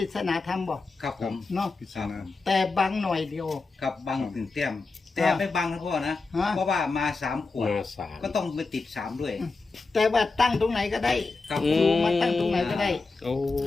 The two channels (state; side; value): quieter; right; 3.9 dB